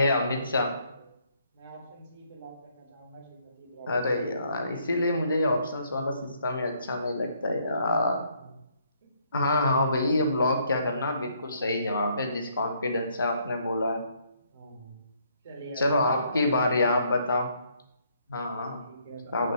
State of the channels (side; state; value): both; inverted; correlation -0.69